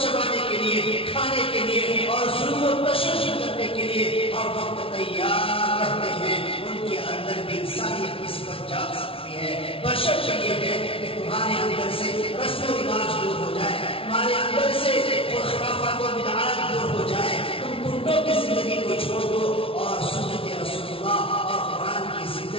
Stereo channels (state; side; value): late; right; 0.26 ms